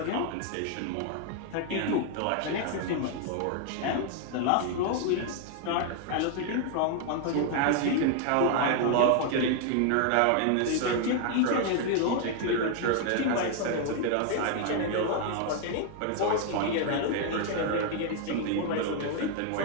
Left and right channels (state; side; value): different; both; correlation 0.00